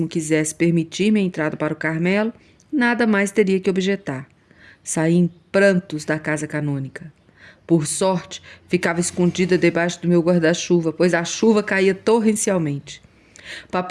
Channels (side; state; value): both; identical; correlation 1.00